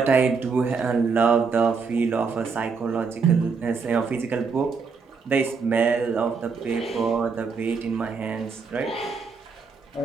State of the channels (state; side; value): quieter; left; 5.1 dB